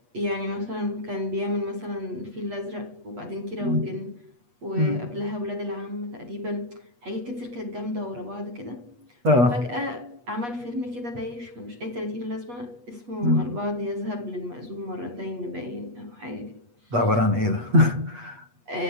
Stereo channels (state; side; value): late; left; 8.3 ms